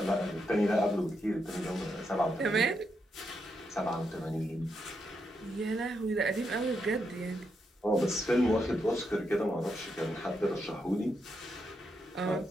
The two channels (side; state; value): both; normal; correlation 0.82